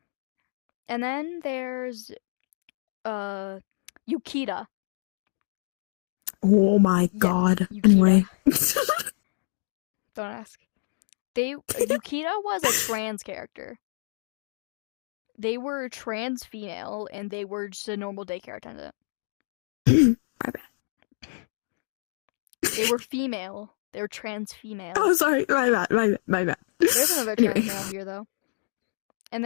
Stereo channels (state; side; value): silent; right; digital silence